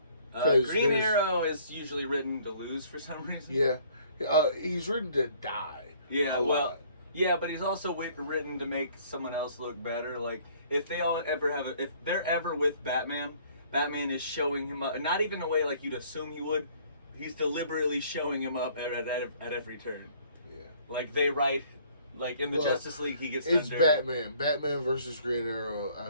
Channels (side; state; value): both; inverted; correlation -0.58